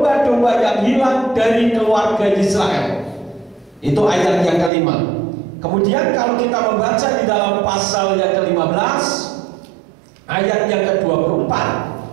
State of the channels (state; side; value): drops out; left; at 4.7 s